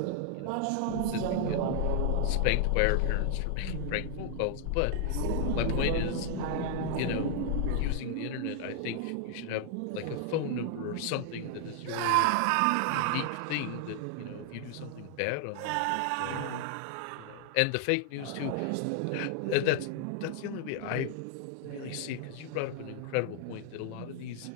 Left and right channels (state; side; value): different; both; correlation 0.00